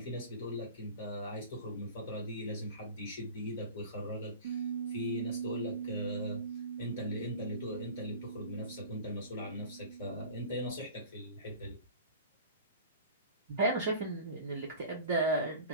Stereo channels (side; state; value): both; inverted; correlation -0.38